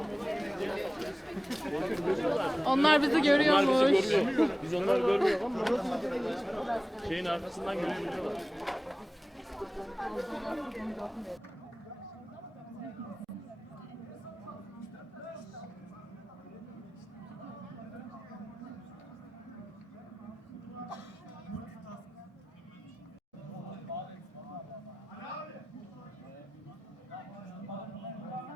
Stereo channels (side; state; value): both; normal; correlation 0.97